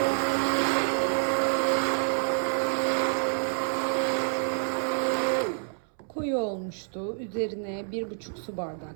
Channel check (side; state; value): left; silent; 59 dB below the other